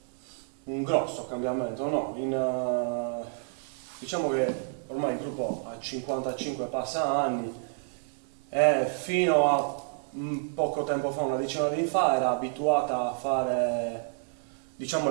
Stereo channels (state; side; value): silent; left; 58 dB below the other